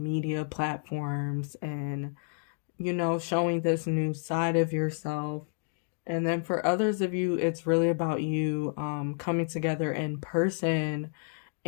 platforms and, you know, showing this new side of yourself. And then for others of you, it's really about you coming together in person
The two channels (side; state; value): right; silent; 58 dB below the other